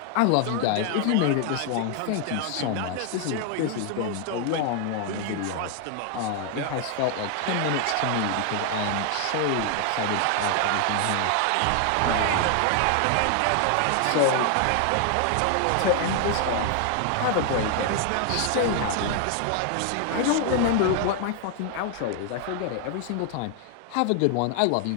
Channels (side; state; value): both; different; correlation 0.00